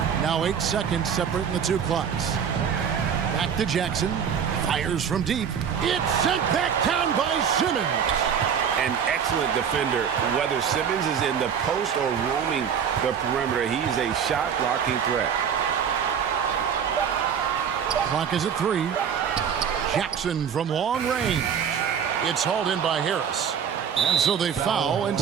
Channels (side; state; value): left; quieter; 7.6 dB